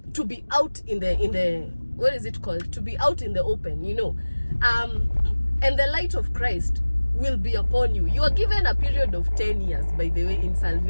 to be out in the what is it called? To be out in the open, you know. And the light of Christ will be upon you. You are given a period of 10 years, by the way, in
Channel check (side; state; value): both; inverted; correlation -1.00